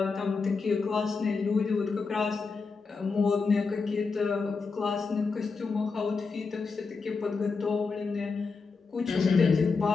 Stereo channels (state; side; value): quieter; right; 4.6 dB